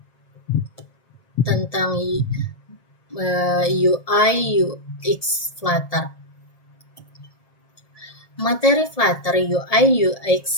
tentang UI UX Flutter. Materi Flutter UI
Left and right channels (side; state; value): right; late; 1.7 ms